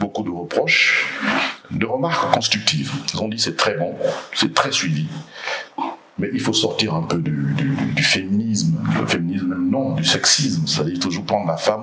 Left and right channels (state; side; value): identical; both; correlation 1.00